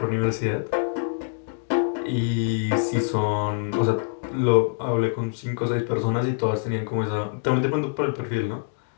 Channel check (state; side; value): silent; right; digital silence